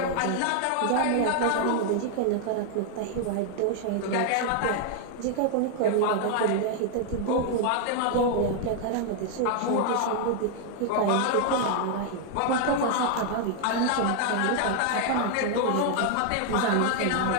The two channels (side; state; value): both; different; correlation 0.00